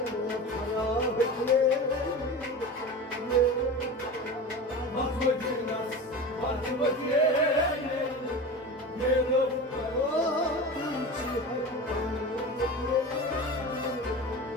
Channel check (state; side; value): normal; both; correlation 0.30